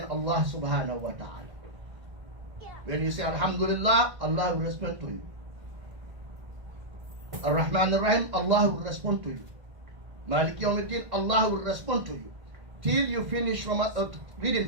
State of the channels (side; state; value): left; late; 1.7 ms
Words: Allah subhanahu wa ta'ala. When you say Alhamdulillah, Allah will respond to you. Ar-Rahman Ar-Rahim, Allah will respond to you. Malik Yawmiddin, Allah will respond to you. Till you finish